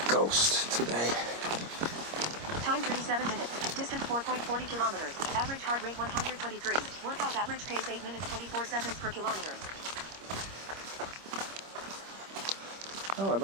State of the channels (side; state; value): left; late; 26 ms